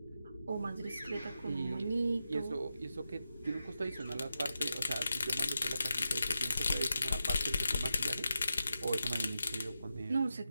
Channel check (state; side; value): inverted; both; correlation -0.88